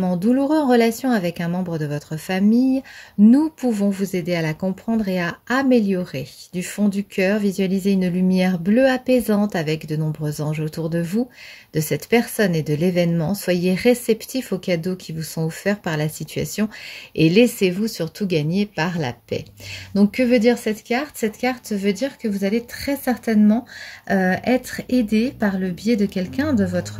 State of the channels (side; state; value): both; identical; correlation 1.00